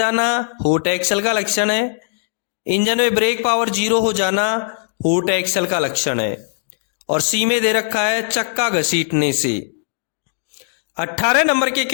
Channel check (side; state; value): right; silent; digital silence